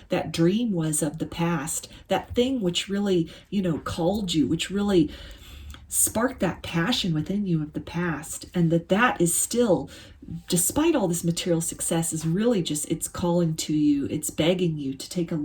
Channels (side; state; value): both; identical; correlation 1.00